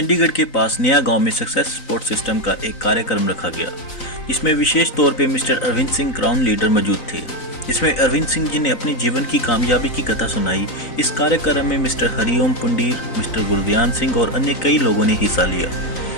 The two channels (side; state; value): right; late; 3.9 ms